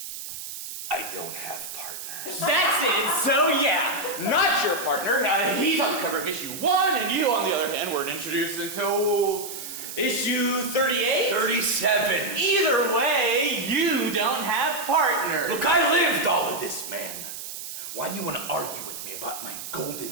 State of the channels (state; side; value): noise; right; hiss, 9 dB below the sound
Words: I don't have partners. That's it! So yeah, not your partner. He's on the cover of issue 1, and you, on the other hand, weren't introduced until issue 38? 37. Either way, you don't have partners. Look, I lived all of this, man. Why do you want to argue with me about my